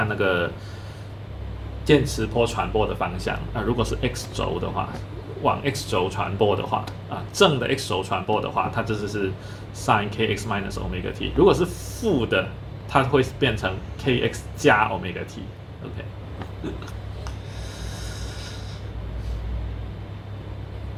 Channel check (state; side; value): identical; both; correlation 1.00